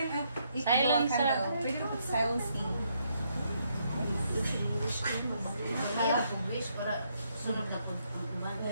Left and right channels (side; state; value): both; inverted; correlation -0.74